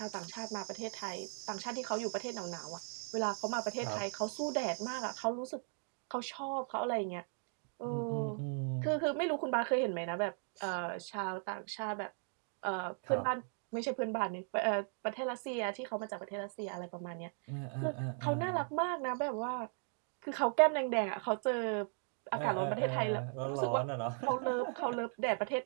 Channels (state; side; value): silent; left; 53 dB below the other